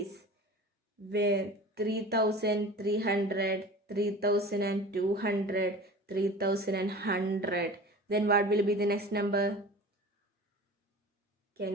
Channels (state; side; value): normal; both; correlation 0.38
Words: Where 3,300, 3,200, 3,100. Then what will be the next number? Can